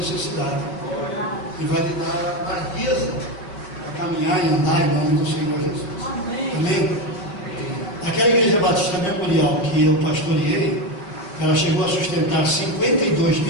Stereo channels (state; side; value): late; right; 5.1 ms